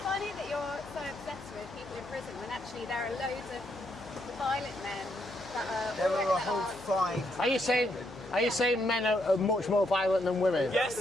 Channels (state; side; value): noise; left; hum, 18 dB below the sound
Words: funny that you're so obsessed with people in prison when actually there are loads of violent men that are. There are a that whole are- 5. Are you saying men are much more violent than women? Yes.